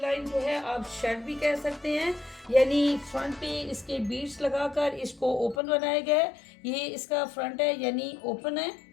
लाइन जो है आप शर्ट भी कह सकते हैं, यानी फ्रंट पे इसके बीड्स लगाकर इसको ओपन बनाया गया है। ये इसका फ्रंट है यानी ओपन है।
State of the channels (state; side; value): drops out; right; at 5.6 s